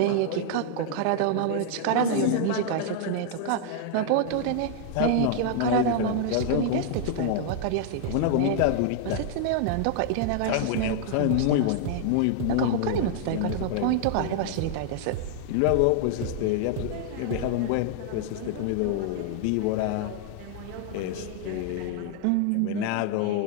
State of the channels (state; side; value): different; both; correlation 0.00